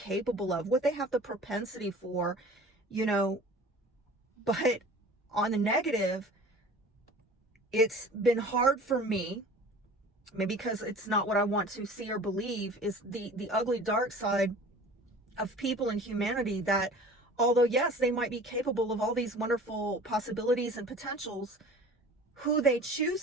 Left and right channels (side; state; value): both; normal; correlation 0.43